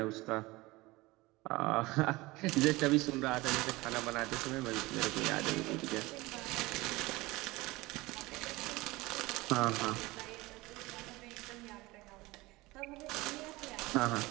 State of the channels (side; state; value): left; quieter; 21.1 dB